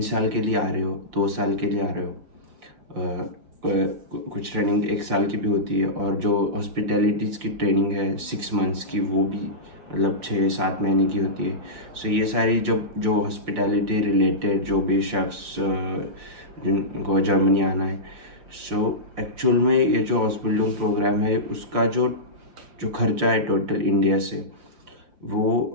साल के लिए आ रहे हो, 2 साल के लिए आ रहे हो, कुछ ट्रेनिंग 1 साल की भी होती है, और जो हॉस्पिटैलिटीज़ की ट्रेनिंग है 6 मंथ्स की, वो भी मतलब 6-7 महीने की होती है। सो ये सारी जो हॉस्पिटैलिटी रिलेटेड जो भी शेफ्स जिनको जर्मनी आना है, सो एक्चुअल में ये जो हॉस्पिटल प्रोग्राम है उसका जो जो खर्चा है टोटल इंडिया से, वो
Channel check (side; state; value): left; late; 5.7 ms